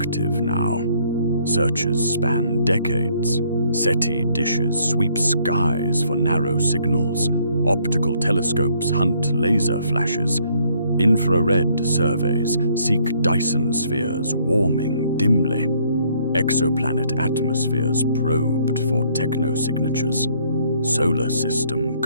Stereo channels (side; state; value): both; inverted; correlation -0.66